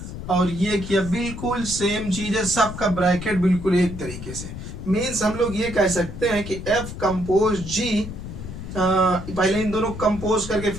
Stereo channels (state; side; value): noise; left; rumble, 9 dB below the sound